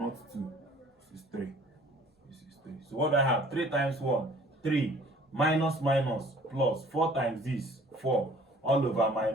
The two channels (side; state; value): both; normal; correlation 0.53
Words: 2. This is 3. This is 3. So what do I have? 3 times 1, 3. Minus minus plus 4 times this, 4. All over